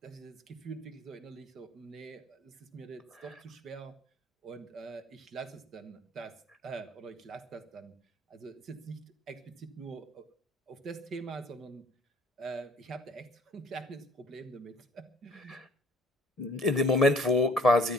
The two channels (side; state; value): both; normal; correlation 0.55